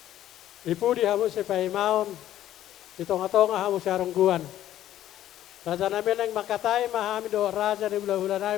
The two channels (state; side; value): quieter; right; 12.5 dB